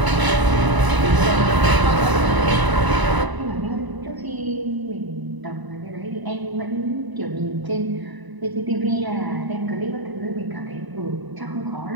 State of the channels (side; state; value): left; late; 1.0 ms